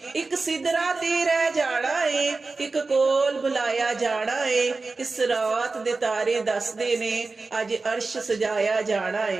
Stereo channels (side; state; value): left; quieter; 3.8 dB